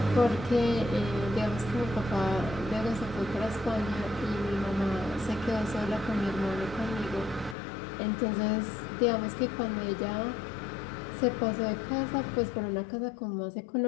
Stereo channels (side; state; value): right; drops out; at 7.6 s